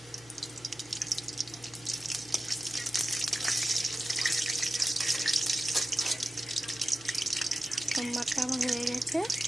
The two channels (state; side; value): noise; right; hum, 26 dB below the sound